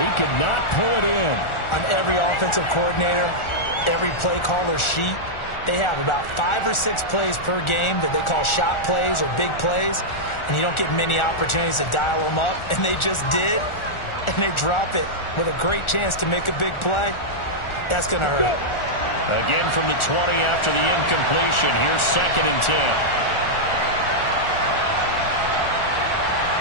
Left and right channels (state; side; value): late; right; 1.4 ms